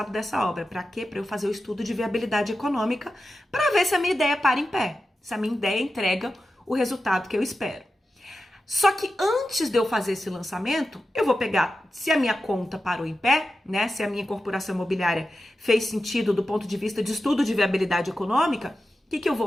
dessa obra. Para quê? Para eu fazer o estudo de viabilidade econômica, para ver se a minha ideia para em pé, se a minha ideia entrega o resultado que eu espero. Só que antes de eu fazer esse lançamento, eu vou pegar, se a minha conta parou em pé, né? Se a minha incorporação imobiliária fez sentido do ponto de vista de estudo de viabilidade econômica, o que eu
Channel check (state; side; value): normal; both; correlation 0.92